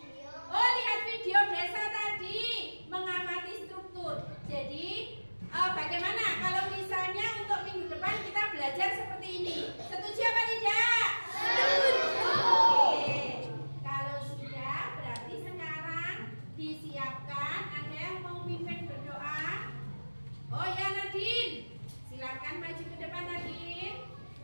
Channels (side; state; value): both; inverted; correlation -1.00